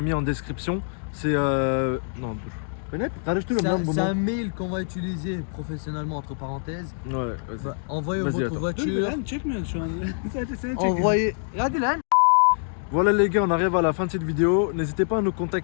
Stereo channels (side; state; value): right; silent; digital silence